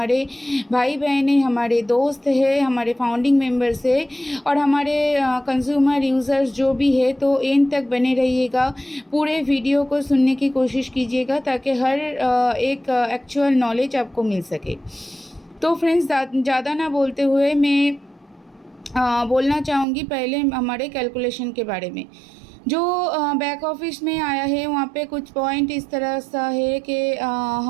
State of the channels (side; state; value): left; drops out; at 19.9 s